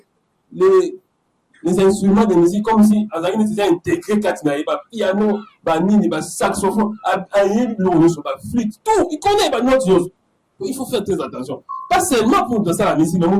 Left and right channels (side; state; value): both; identical; correlation 1.00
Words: les instruments de musique comme si Azari était intégré Katina, piano, banini, saxophone, flûte, tout. Il connaît notre chose. Il faut faire très attention. Pas seulement pour danser la musique, mais